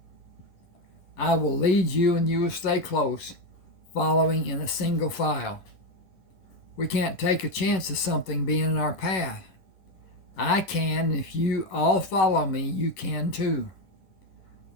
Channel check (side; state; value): right; late; 11 ms